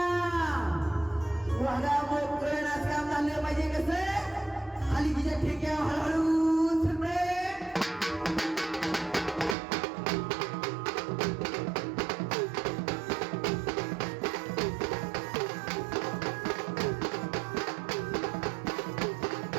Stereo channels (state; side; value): drops out; left; at 9.6 s